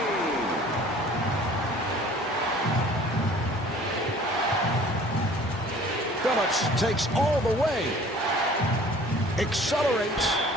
Phillips takes all the way. Accelerates.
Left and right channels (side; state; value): both; normal; correlation 0.50